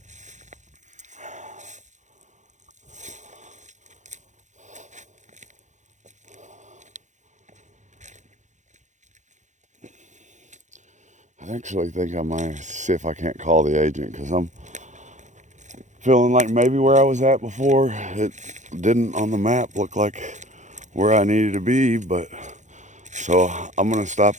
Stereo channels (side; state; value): left; late; 0.35 ms